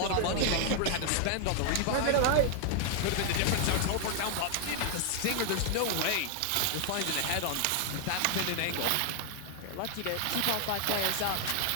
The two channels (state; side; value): different; both; correlation 0.00